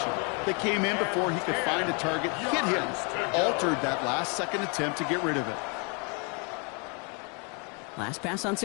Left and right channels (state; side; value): quieter; right; 35.0 dB